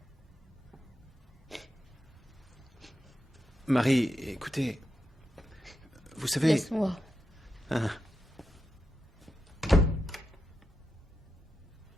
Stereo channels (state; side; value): normal; both; correlation 0.88